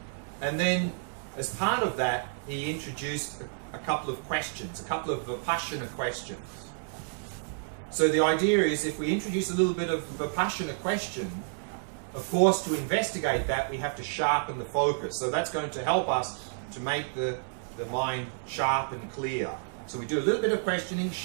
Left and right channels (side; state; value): left; silent; 58 dB below the other